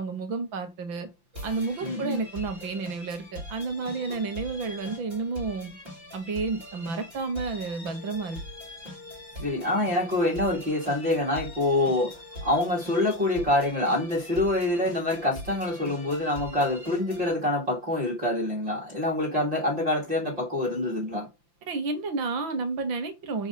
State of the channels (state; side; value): late; left; 5.8 ms